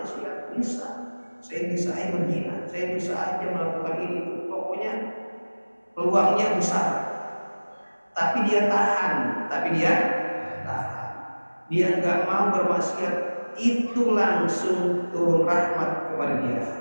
bisa. Saya bisa aja berzina, saya bisa aja melakukan ini. Pokoknya peluangnya besar. Tapi dia tahan. Dia nggak mau bermaksiat, itu langsung turun rahmat kepada dia.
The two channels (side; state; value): both; inverted; correlation -1.00